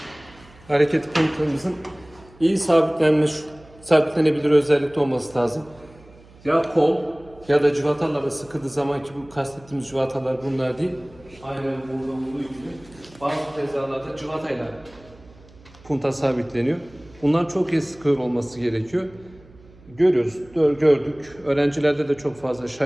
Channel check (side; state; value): right; noise; hum, 25 dB below the sound